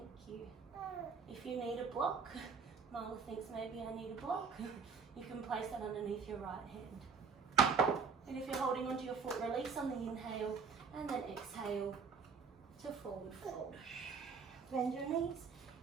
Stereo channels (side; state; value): left; quieter; 5.4 dB